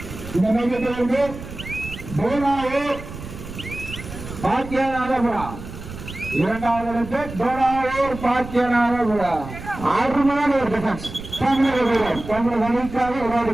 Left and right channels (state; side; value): noise; right; rumble, 12 dB below the sound